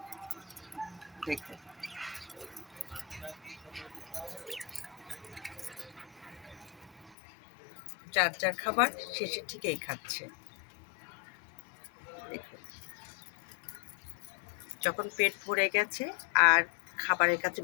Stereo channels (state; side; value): drops out; right; at 7.2 s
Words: দেখুন, যার যার খাবার শেষে ঠিকই খাচ্ছে। দেখুন, যখন পেট ভরে গেছে আর খাবারের কাছে